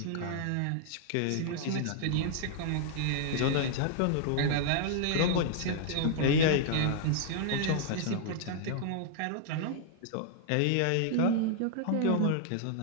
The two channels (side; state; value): both; different; correlation -0.01